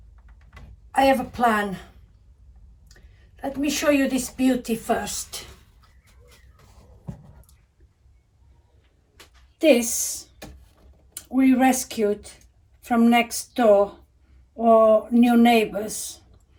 have a plan. Let me show you this beauty first. This we rescued from next door or new neighbors.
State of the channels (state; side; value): identical; both; correlation 1.00